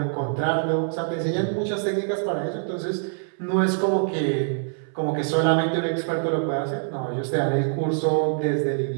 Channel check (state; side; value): silent; left; 61 dB below the other